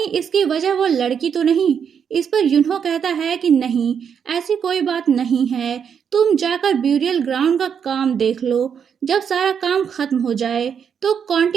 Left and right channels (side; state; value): left; quieter; 7.4 dB